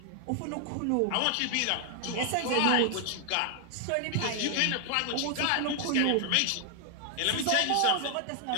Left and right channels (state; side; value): different; both; correlation 0.00